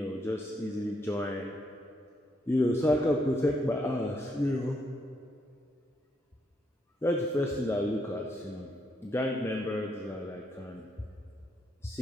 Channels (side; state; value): both; normal; correlation 0.76